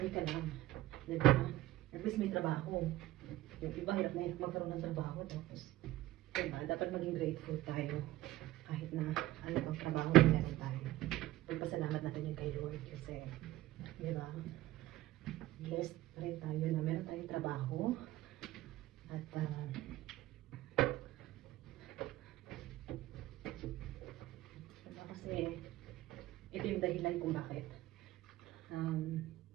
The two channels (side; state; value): left; quieter; 16.1 dB